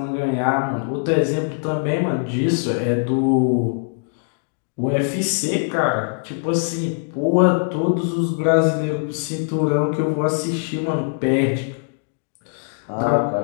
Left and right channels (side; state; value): right; silent; digital silence